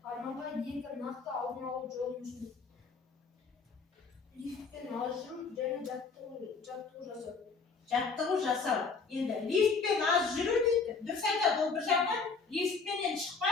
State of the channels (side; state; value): right; quieter; 4.8 dB